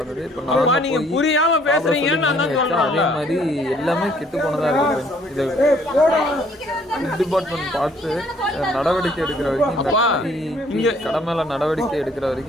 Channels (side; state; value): both; normal; correlation 0.62